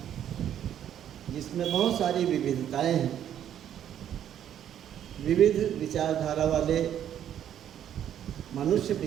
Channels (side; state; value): left; quieter; 10.2 dB